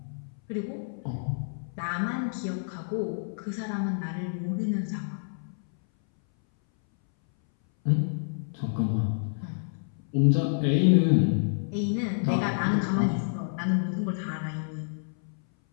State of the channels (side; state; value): right; silent; 59 dB below the other